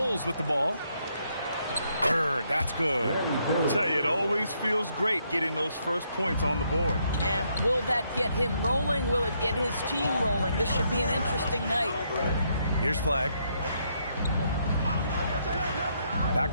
with the ball. Bird, that's good. I'll tell you, it always feels great getting those first points on the board. And will that get him rolling? Will it get his team rolling? This should be an interesting night. Here's Flag.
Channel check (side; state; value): both; inverted; correlation -0.74